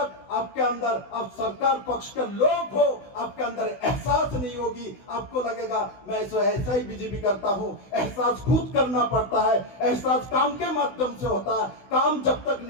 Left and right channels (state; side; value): late; right; 16 ms